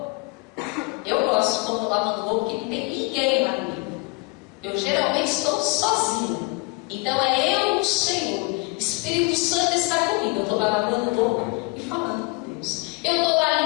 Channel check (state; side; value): quieter; right; 28.5 dB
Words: Eu gosto quando estou lavando roupa, porque não tem ninguém lá comigo. Eu geralmente estou sozinha. Então é eu, o Senhor. Espírito Santo está comigo. Eu estou lá lavando roupa e falando com Deus. Eu estou lá